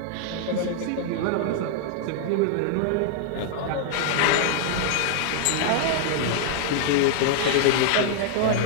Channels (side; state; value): both; different; correlation 0.00